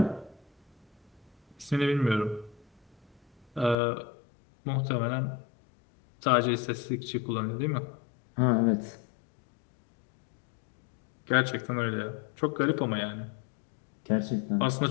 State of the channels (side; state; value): right; drops out; at 3.8 s